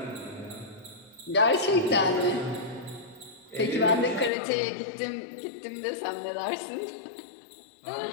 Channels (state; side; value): drops out; right; at 4.3 s